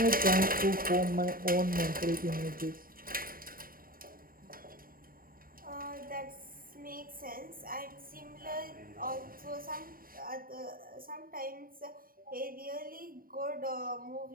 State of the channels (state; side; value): late; left; 0.41 ms